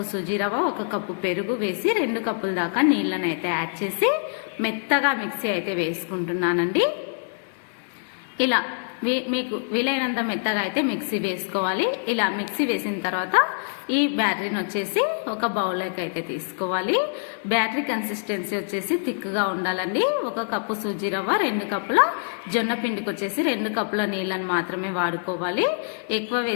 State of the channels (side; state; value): right; silent; digital silence